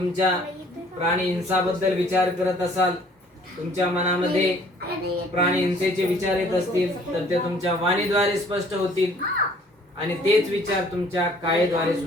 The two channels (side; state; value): both; normal; correlation 0.57